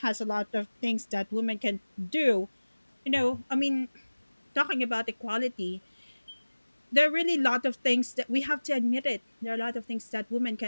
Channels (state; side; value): inverted; both; correlation -1.00